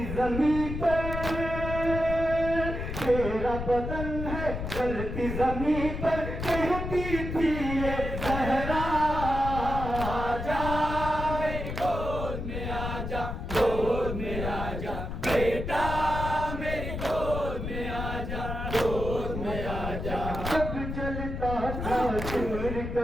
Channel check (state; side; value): noise; left; rumble, 5 dB below the sound